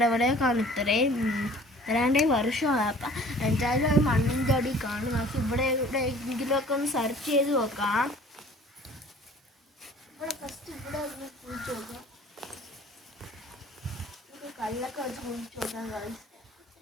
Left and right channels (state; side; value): normal; both; correlation 0.50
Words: കാണും. ഇത്രയാണ്ടേ വർഷമാണ്. അപ്പം എന്തായാലും അത് മണ്ണിൻ്റെ അടി കാണും. പക്ഷെ എവിടെയെങ്കിലുമൊക്കെ ഒന്ന് സെർച്ച് ചെയ്ത് നോക്കാം. ഇവിടെ ഒന്ന് കുഴിച്ച് നോക്കാം. കല്ലൊക്കെ വെച്ച് കുഴിച്ച് നോക്കാം ഗൈസ്.